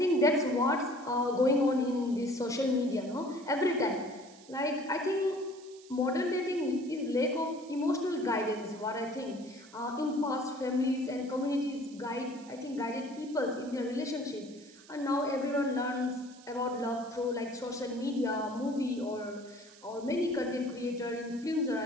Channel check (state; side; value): noise; right; hiss, 22 dB below the sound